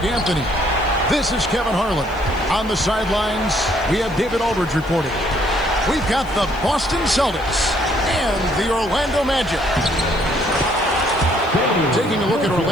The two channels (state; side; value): noise; left; hiss, 26 dB below the sound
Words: Anthony. This is Kevin Harlan. On the sidelines, we have David Aldridge reporting. We've got the Boston Celtics and the Orlando Magic. Taking a look at